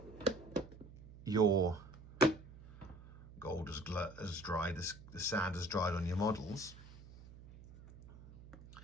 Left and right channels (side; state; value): right; noise; hum, 18 dB below the sound